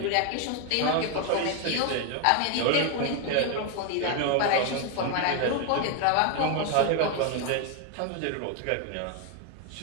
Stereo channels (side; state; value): both; different; correlation 0.01